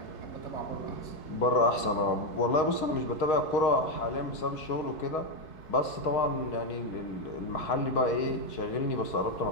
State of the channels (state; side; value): late; right; 4.7 ms